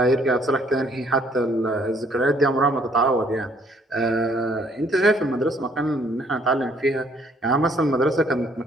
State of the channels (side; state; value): both; normal; correlation 0.64